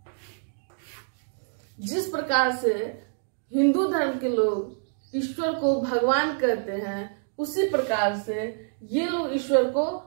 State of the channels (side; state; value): left; silent; digital silence